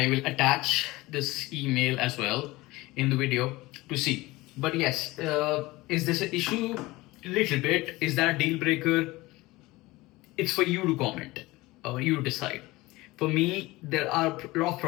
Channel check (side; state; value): right; quieter; 20.4 dB